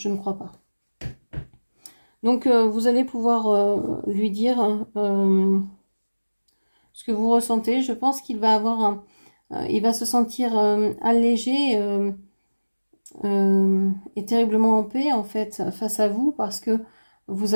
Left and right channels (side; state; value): both; inverted; correlation -1.00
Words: ne crois pas. Donc, vous allez pouvoir lui dire ce que vous ressentez. Je pense qu'il va avoir il va se sentir allégé et terriblement en paix, en fait, face à vous, parce que vous